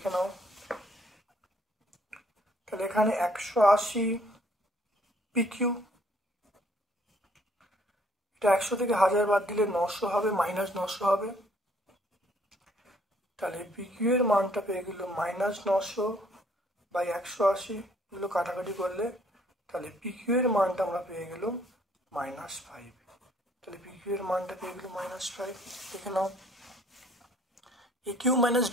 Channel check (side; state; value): both; normal; correlation 0.62